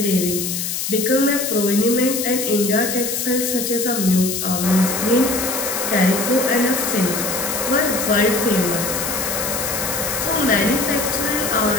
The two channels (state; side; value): noise; left; hiss, 3 dB below the sound